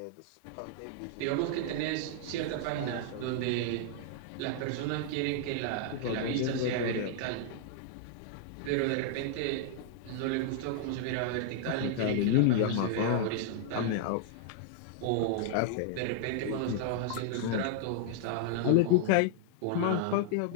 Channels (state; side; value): different; both; correlation -0.01